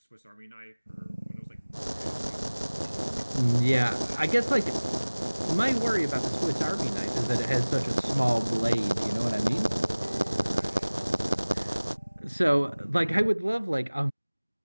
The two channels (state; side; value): inverted; both; correlation -1.00